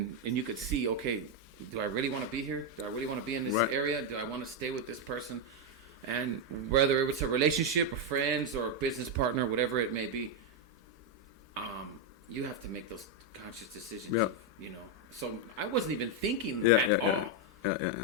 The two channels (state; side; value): normal; both; correlation 0.03